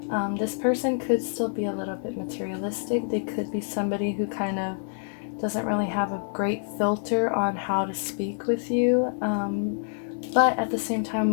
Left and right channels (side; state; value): right; silent; 60 dB below the other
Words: this person could still be a little bit materialistic. They could be somebody who kind of doesn't really have a great filter on how to speak with you. But at the same time,